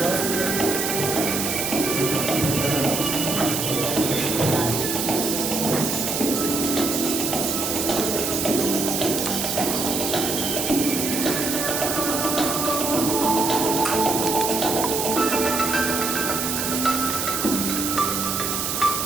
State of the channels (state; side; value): noise; right; hiss, 1 dB below the sound